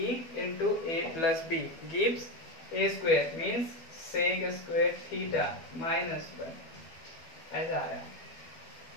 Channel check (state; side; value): late; right; 12 ms